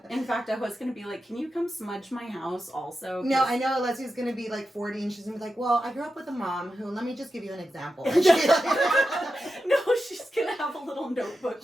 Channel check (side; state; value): both; normal; correlation 0.90